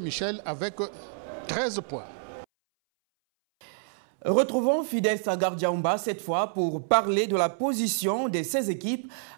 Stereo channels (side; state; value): left; silent; 59 dB below the other